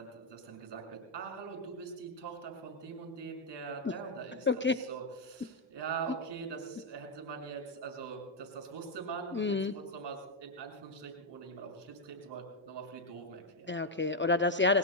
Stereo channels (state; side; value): normal; both; correlation 0.00